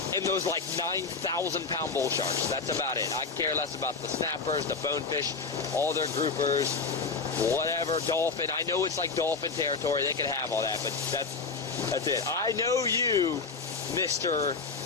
and those like 9,000 pound bull sharks. That's about it. I care less about the snappers, the bonefish, all their groupers, whatever, dolphin. I know it's like dolphin territory. They can have all that, but that's it. I know you, Mr.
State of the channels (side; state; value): right; quieter; 4.6 dB